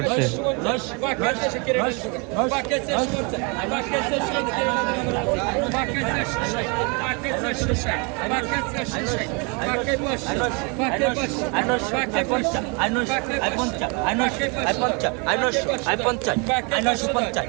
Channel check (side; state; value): left; quieter; 32.5 dB